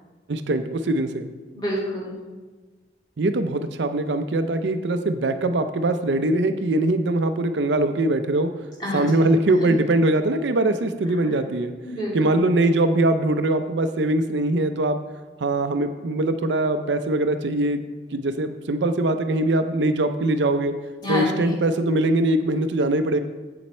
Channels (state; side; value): normal; both; correlation 0.38